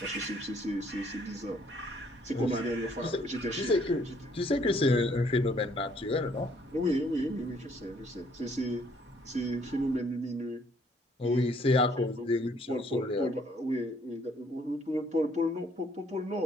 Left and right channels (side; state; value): both; normal; correlation 0.64